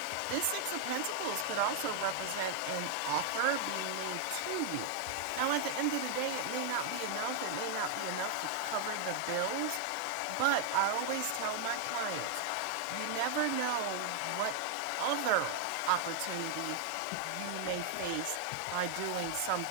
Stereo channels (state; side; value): different; both; correlation 0.00